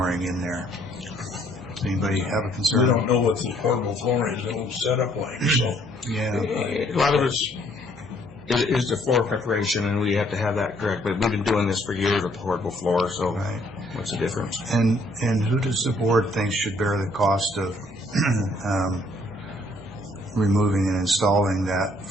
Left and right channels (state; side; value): normal; both; correlation 0.64